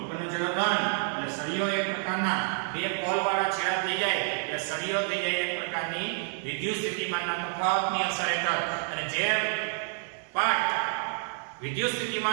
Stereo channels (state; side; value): silent; left; 59 dB below the other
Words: ઉપરનો છેડો ધન. એટલે સળિયો એક પ્રકારના બે પોલ વાળા છેડા થઈ જાય એટલે સળિયો થઈ જાય એક પ્રકારની વિદ્યુત સ્થિતિમાનના તફાવતની અસર હેઠળ. અને જે પાર્ટ વિદ્યુત